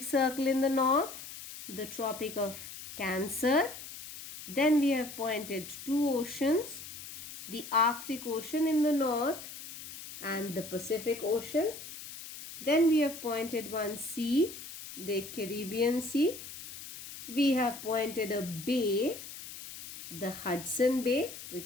Circle in the north, the Tropic of Cancer. Then we have pointed two oceans, the Arctic Ocean in the north and the Pacific Ocean. Then we have pointed one sea, the Caribbean Sea. We have pointed a bay, the Hudson Bay,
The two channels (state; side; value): noise; left; hiss, 12 dB below the sound